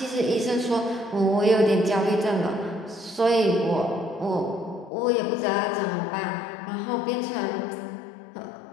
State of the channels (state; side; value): drops out; right; at 4.9 s